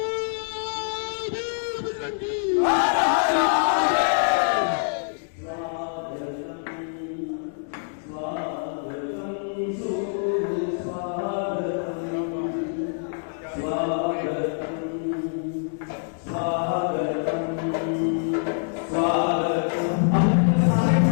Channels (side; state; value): right; silent; digital silence